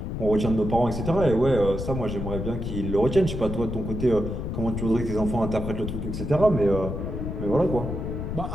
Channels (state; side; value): noise; left; rumble, 4 dB below the sound